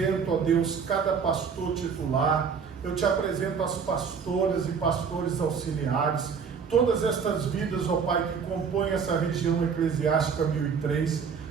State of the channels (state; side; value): quieter; left; 6.2 dB